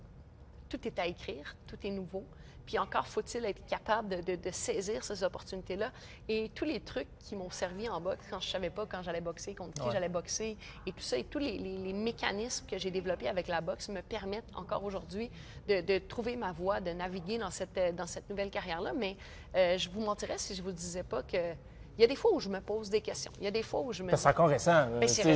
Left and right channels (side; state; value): both; identical; correlation 1.00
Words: tout est à écrire, tout est nouveau. Puis encore faut-il être capable de saisir ces opportunités-là. Et tous les trucs qui m'ont servi en boxe quand je ne savais pas quand j'allais boxer, contre qui j'allais boxer, et tout ça, et tous les mécanismes que j'ai développés avec la boxe me permettent encore aujourd'hui de trouver ma voie, de naviguer dans cette nouvelle carrière-là. Mais je vous mentirais si je ne vous disais pas que... Il y a des fois où je me pose des questions. Il y a des fois où je me... C'est encore récent. C'est